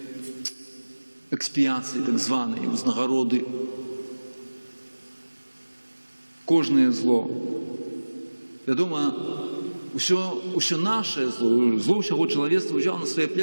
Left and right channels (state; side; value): inverted; both; correlation -1.00